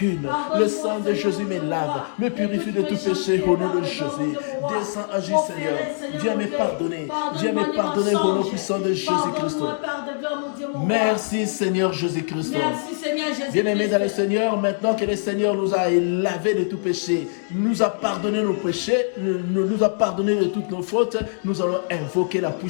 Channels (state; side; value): silent; right; digital silence